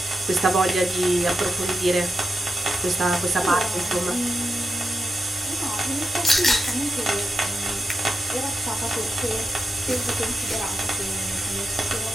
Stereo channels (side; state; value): both; normal; correlation 0.89